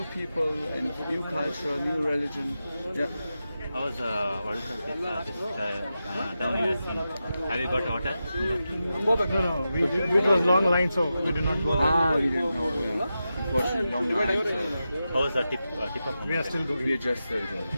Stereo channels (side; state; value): both; inverted; correlation -0.90